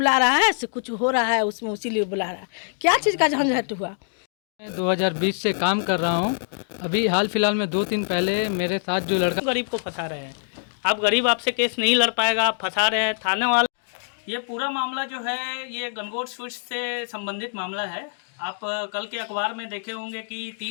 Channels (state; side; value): silent; right; digital silence